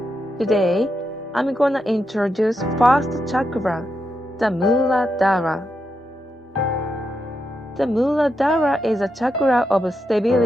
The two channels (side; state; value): both; normal; correlation 0.84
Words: Today, I'm gonna introduce first chakra, the Muladhara. The Muladhara is a chakra of